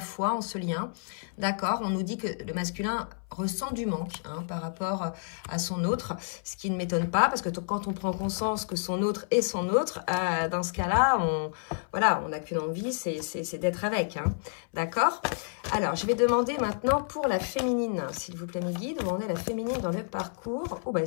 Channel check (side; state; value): right; silent; 58 dB below the other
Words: en ce lien. D'accord, on nous dit que le masculin ressent du manque, hein, par rapport à son autre, ce qui ne m'étonne pas, parce que quand on prend conscience que son autre est son autre, dans ce cas-là, on n'a qu'une envie, c'est d'être avec, hein, d'accord? Alors, je vais demander maintenant pour la féminine, s'il vous plaît, mes guides, où en est la féminine dans le parcours? Oh, bah,